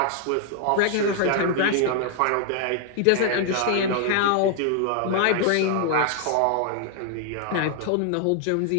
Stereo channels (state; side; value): different; both; correlation 0.00